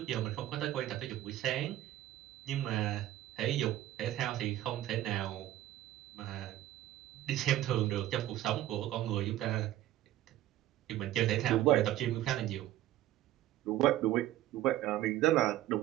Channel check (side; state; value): left; quieter; 14.1 dB